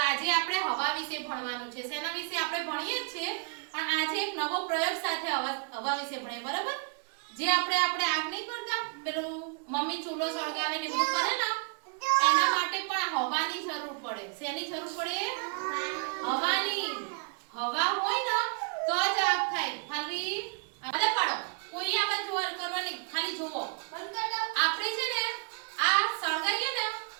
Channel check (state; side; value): quieter; left; 34.6 dB